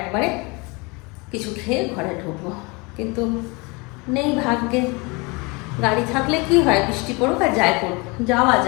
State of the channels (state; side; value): quieter; right; 27.7 dB